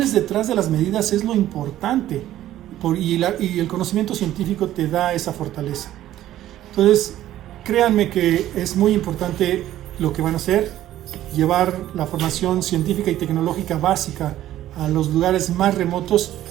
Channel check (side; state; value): left; quieter; 13.3 dB